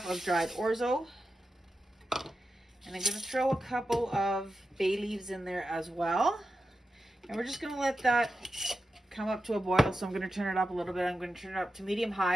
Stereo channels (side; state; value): both; normal; correlation 0.90